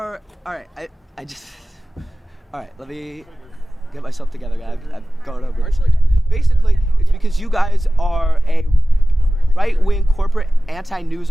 All right, all right, let me get myself together, guys. I've gone over this. Basically, it's because you guys are a right-wing corporate anti-news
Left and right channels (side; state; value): both; normal; correlation 0.96